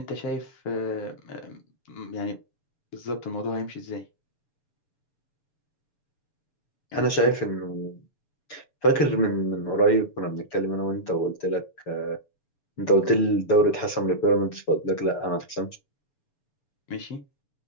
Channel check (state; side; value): late; right; 6.9 ms